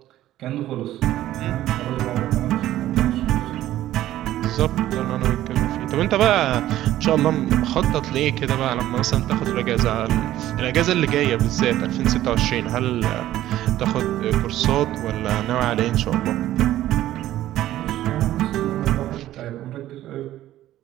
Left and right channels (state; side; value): quieter; left; 13.8 dB